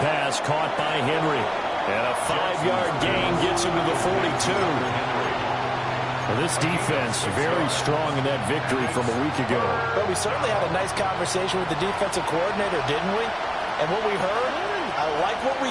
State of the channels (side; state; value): both; identical; correlation 1.00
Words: pass caught by Henry. And a 5-yard gain gets him to the 42. Well, this defense very strong in that victory from a week ago. But we certainly had a nice conversation with the defensive coordinator, didn't we? And what we heard, I like what we